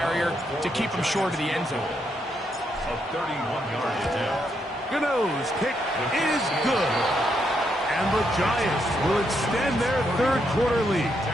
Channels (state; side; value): normal; both; correlation 0.78